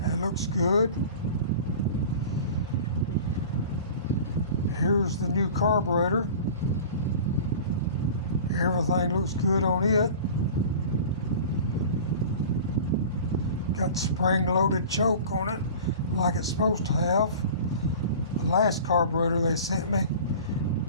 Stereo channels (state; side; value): inverted; both; correlation -0.39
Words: looks good. Here's the new carburetor. Everything looks good on it. Got spring-loaded choke on it like it's supposed to have. The last carburetor they sent me